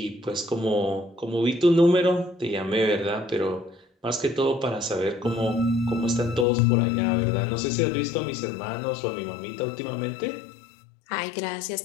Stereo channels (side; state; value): right; drops out; at 6.5 s